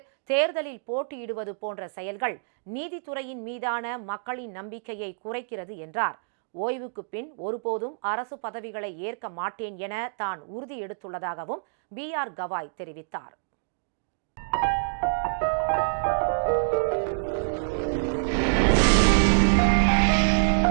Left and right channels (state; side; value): silent; left; digital silence